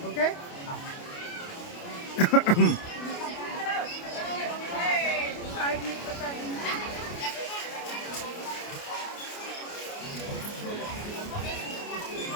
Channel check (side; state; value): right; late; 29 ms